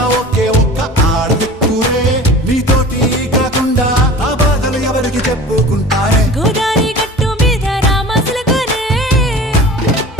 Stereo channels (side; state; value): both; normal; correlation 0.40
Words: ఒకే ఒక్క ఆడదిక్కురే నీతోటి కాకుండా ఆ బాధలు ఎవరికి చెప్పుకుంటారే గోదారి గట్టు మీద రామసలకునే